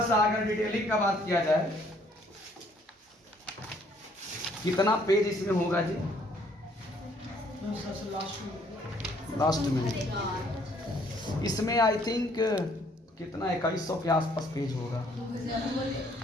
सा अगर डिटेलिंग का बात किया जाए, कितना पेज इसमें होगा जी? लास्ट में इसमें आई थिंक कितना 2100 के आसपास पेज होगा,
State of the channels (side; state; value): both; normal; correlation 0.63